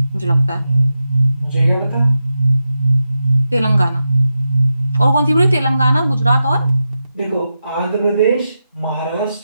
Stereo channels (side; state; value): both; inverted; correlation -0.89